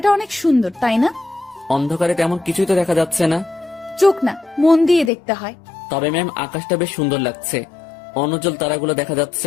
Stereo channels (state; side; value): drops out; right; at 5.1 s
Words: অনেক সুন্দর, তাই না? অন্ধকারে তেমন কিছুই তো দেখা যাচ্ছে না। চোখ না, মন দিয়ে দেখতে হয়। তবে ম্যাম আকাশটা বেশ সুন্দর লাগছে, অনুজ্জ্বল তারাগুলো দেখা